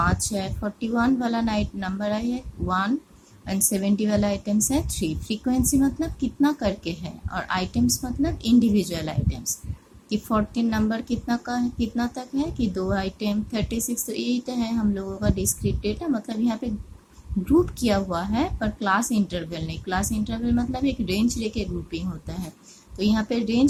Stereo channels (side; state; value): both; identical; correlation 1.00